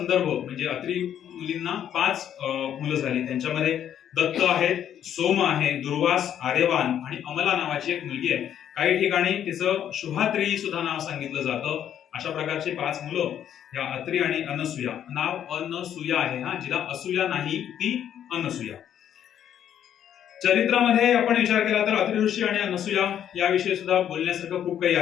म्हणजे अत्री मुलींना 5 मुलं झाली. त्यांच्यामध्ये दत्त आहेत, सोम आहे, दुर्वास, आर्यवान आणि अमला नावाची एक मुलगी आहे. काही ठिकाणी तिचं शुभात्री सुद्धा नाव सांगितलं जातं. अशा प्रकारची 5 मुलं या अत्री आणि अनसूया. नाव अनसूया आहे, हा, जिला असूया नाही ती अनसूया. चरित्रामध्ये आपण विचार केला तर अत्री ऋषी आणि अनसूया याविषयी सुद्धा बोलण्यासारखं खूप काही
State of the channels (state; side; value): quieter; right; 9.9 dB